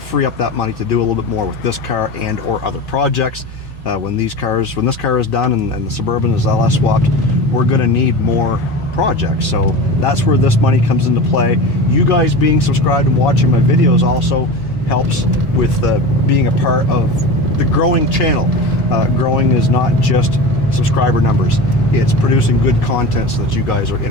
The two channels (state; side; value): normal; both; correlation 0.29